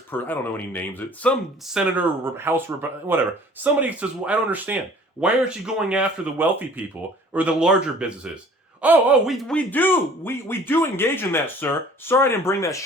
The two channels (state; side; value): normal; both; correlation 0.50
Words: person, I don't know any names, some senator, House, whatever, somebody says, well, I don't understand. Why aren't you going after the wealthy people or the larger businesses? We do engage in that, sir. Sorry I didn't bring that